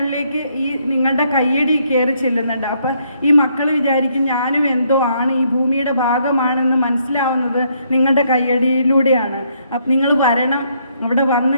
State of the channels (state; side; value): inverted; both; correlation -0.71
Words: ഈ നിങ്ങളുടെ കയ്യടി കയറി ചെല്ലുന്നുണ്ട്. അപ്പം ഈ മക്കൾ വിചാരിക്കും ഞാനും എന്തോ ആണ്, ഈ ഭൂമിയുടെ ഭാഗമാണെന്ന് മനസ്സിലാവുന്നത് നിങ്ങളുടെ കയ്യടിയിലൂടെയാണ്. അപ്പം നിങ്ങൾ വരണം, അവിടെ വന്ന്